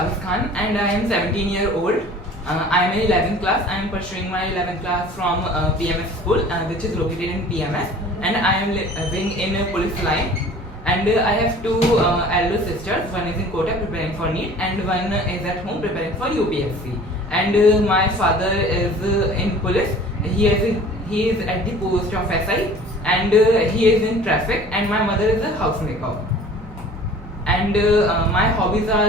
Khan and I am 17 years old. I am in 11th class. I am pursuing my 11th class from PMS school which is located in PMS, and I am living in police line, and I have two elder sisters. One is in Kota preparing for NEET and one is at home preparing for UPSC. And my father is in police. He is at the post of SI, and he is in traffic, and my mother is a housemaker. And my hobbies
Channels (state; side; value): normal; both; correlation 0.46